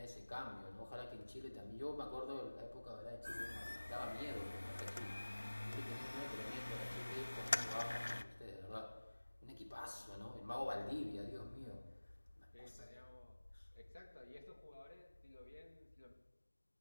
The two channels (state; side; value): inverted; both; correlation -1.00